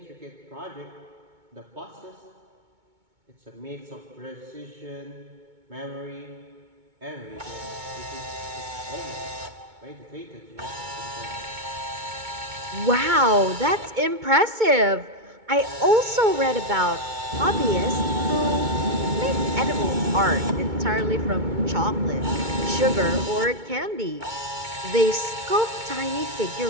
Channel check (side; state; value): left; late; 2.2 ms